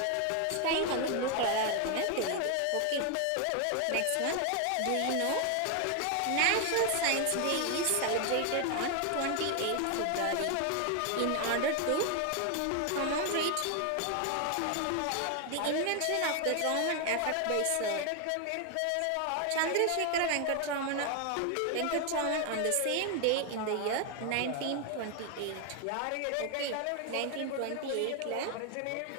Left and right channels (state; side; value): different; both; correlation 0.01